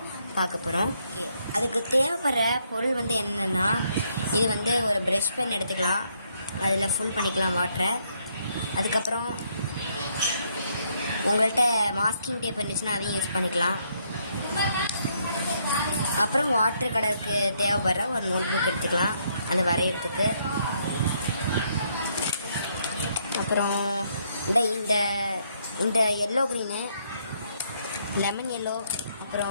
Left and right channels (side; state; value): both; inverted; correlation -0.72